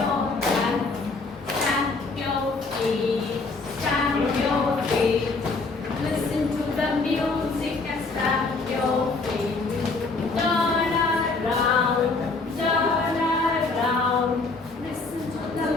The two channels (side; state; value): right; quieter; 3.8 dB